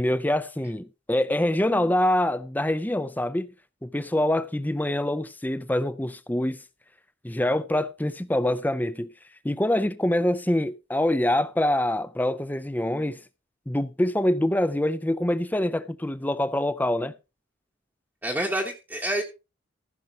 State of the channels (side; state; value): both; normal; correlation 0.88